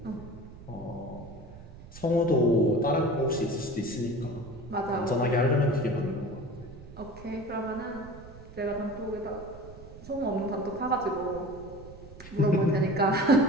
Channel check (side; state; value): right; noise; rumble, 17 dB below the sound